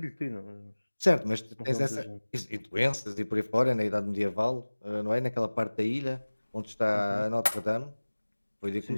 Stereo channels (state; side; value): inverted; both; correlation -1.00